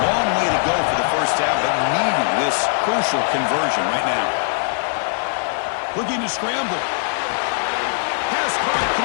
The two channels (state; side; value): silent; right; digital silence